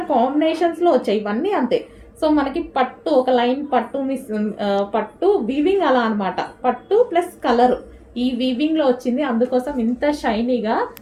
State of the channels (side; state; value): both; identical; correlation 1.00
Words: కాంబినేషన్స్లో వచ్చాయి, ఇవన్నీ అంతే. సో మనకి పట్టు ఒక లైన్ పట్టు పట్టు వీవింగ్ అలా అనమాట. పట్టు ప్లస్ కలర్ ఈ వీవింగ్లో వచ్చింది, అందుకోసం ఇంత షైనీగా.